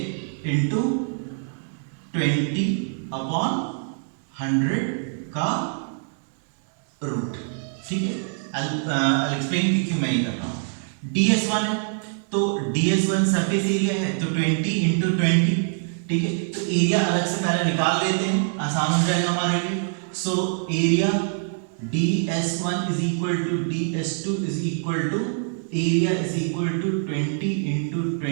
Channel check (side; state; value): left; silent; digital silence